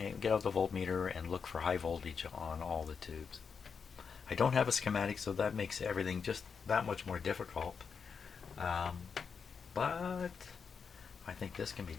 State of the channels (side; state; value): right; quieter; 6.0 dB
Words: out the voltmeter and look for high voltage on all the tubes. I don't have a schematic, so that makes everything just that much more difficult. But I think this can be